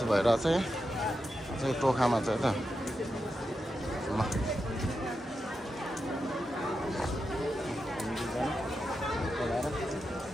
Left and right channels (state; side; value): normal; both; correlation 0.88